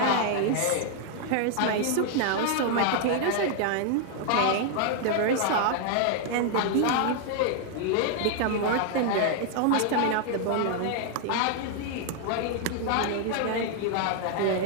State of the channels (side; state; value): both; different; correlation 0.00